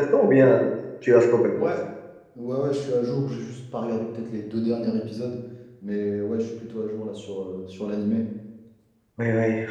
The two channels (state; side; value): identical; both; correlation 1.00